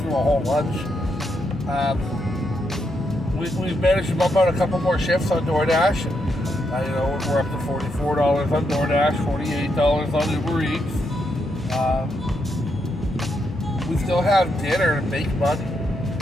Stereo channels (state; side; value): normal; both; correlation 0.80